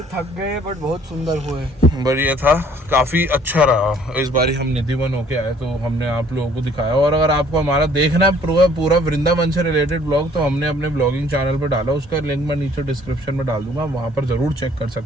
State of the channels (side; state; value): both; normal; correlation 0.58